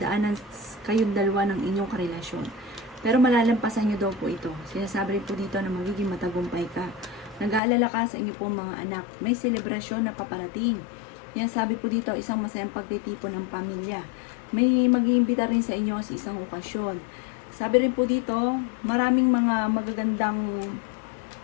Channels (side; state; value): right; drops out; at 7.6 s